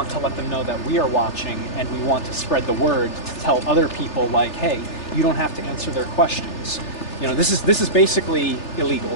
to let them know that we are watching, and we want to spread the word to tell other people, like, hey, you don't have to answer their questions. You know, this is basically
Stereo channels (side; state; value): right; late; 3.3 ms